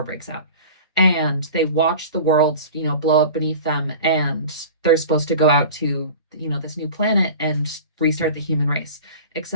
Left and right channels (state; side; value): inverted; both; correlation -0.37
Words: breaks out. And they watch the world, blow up beneath them. And they're supposed to go out to, this new planet and restart the human race.